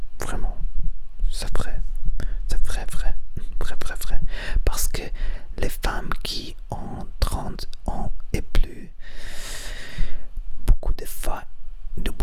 vraiment, c'est vrai, c'est vrai, vrai, vrai, vrai, vrai, parce que les femmes qui ont 30 ans et plus, beaucoup de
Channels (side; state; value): both; identical; correlation 1.00